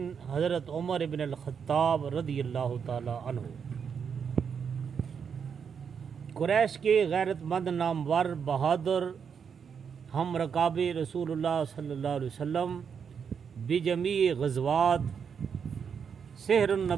حضرت عمر ابن الخطاب رضی اللہ تعالی عنہ قریش کے غیرت مند نامور بہادر ہم رکاب رسول اللہ صلی اللہ علیہ وسلم بجمیع غزوات سحر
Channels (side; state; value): left; quieter; 6.8 dB